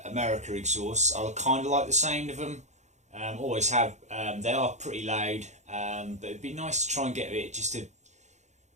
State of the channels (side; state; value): left; late; 0.34 ms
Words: America exhausts. I kind of like the sound of them, always have. They are pretty loud, but it'd be nice to try and get it just to,